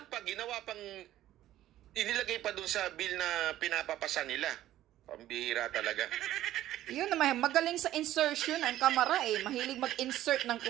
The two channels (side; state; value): left; quieter; 13.6 dB